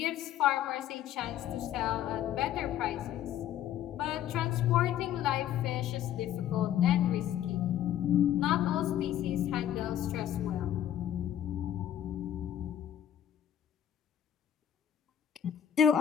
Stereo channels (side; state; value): right; quieter; 10.9 dB